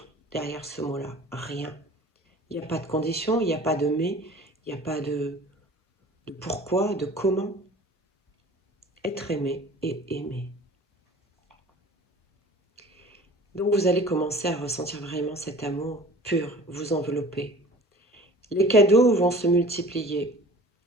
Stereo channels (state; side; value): normal; both; correlation 0.45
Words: derrière ce mot-là, rien. Il n'y a pas de condition, il n'y a pas de mais, il n'y a pas de pourquoi, de comment. Être aimé et aimer. Donc vous allez commencer à ressentir vraiment cet amour pur vous envelopper. Les cadeaux vont se multiplier.